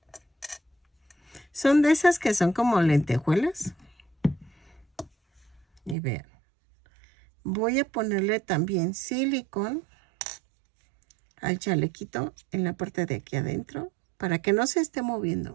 Son de esas que son como lentejuelas. Y vean. Voy a ponerle también silicón al chalequito en la parte de aquí adentro para que no se esté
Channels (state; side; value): drops out; left; at 6.0 s